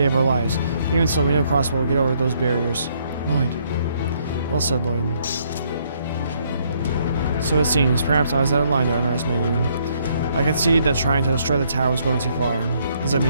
of our lives. Even so, we know Crossbow will get over those barriers. Lloyd. Well said, Lloyd. So it seems. Perhaps I was out of line to underestimate you. I concede that trying to destroy the tower was going too far. Does that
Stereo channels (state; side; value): inverted; both; correlation -0.70